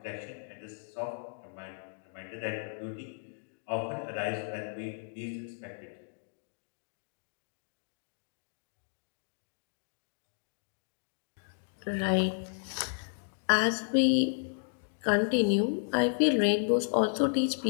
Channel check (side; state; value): right; silent; digital silence